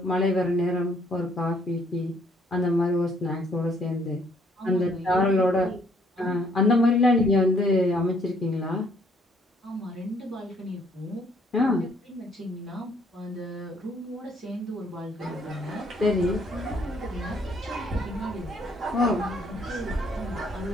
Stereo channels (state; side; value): normal; both; correlation 0.65